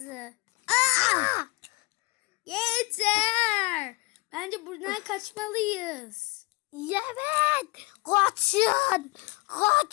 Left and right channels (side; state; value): right; quieter; 24.5 dB